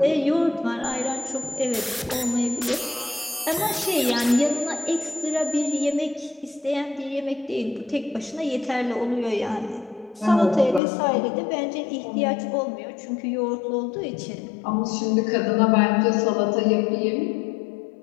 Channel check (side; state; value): right; drops out; at 10.8 s